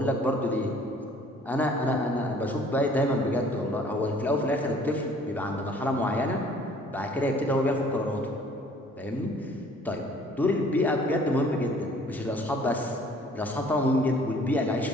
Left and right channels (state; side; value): normal; both; correlation 0.55